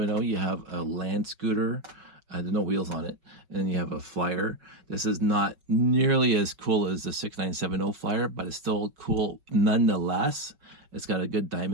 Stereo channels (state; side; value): late; left; 5.3 ms